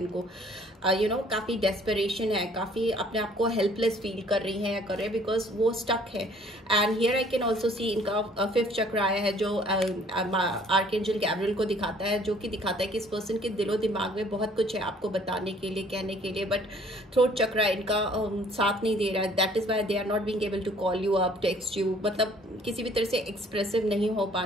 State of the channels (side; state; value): both; normal; correlation 0.57